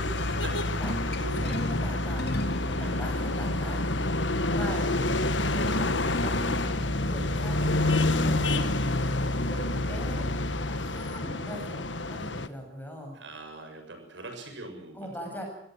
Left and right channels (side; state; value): both; normal; correlation 0.48